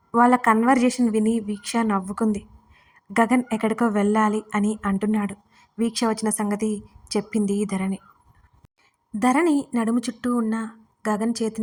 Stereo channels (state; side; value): identical; both; correlation 1.00